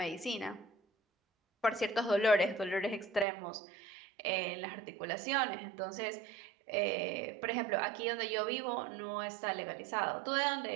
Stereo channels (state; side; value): drops out; left; at 3.2 s